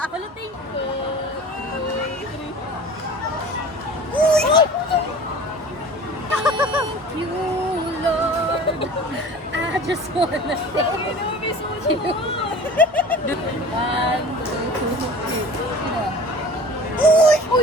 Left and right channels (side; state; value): both; normal; correlation 0.41